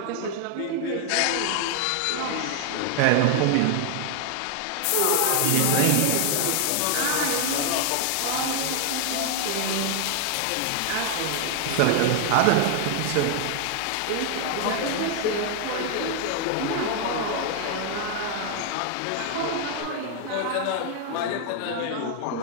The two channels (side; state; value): both; different; correlation 0.00